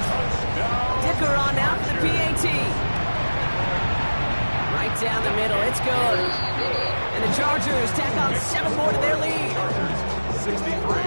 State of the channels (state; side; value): inverted; both; correlation -1.00